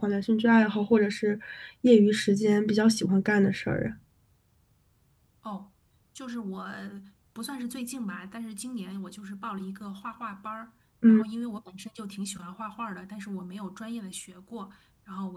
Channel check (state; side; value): identical; both; correlation 1.00